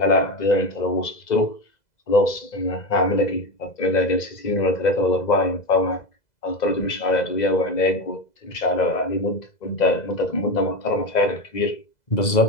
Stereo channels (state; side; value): late; right; 2.0 ms